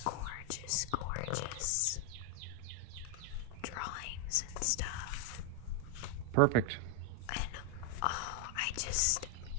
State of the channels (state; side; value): different; both; correlation 0.01